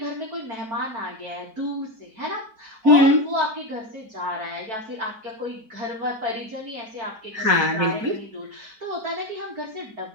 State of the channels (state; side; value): late; left; 4.5 ms